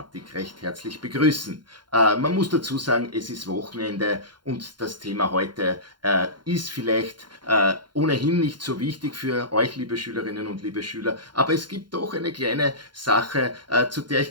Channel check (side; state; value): left; late; 0.71 ms